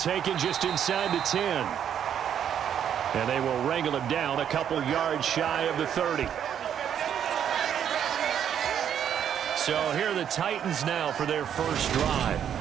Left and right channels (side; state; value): left; quieter; 9.1 dB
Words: just inside the 10. And they will wrangle him down a couple yards shy of the 30. So here are the Titans now for their first drive.